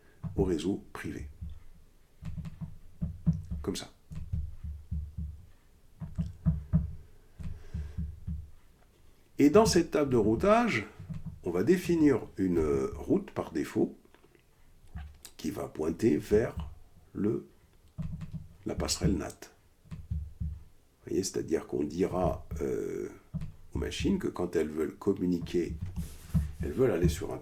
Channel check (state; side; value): identical; both; correlation 1.00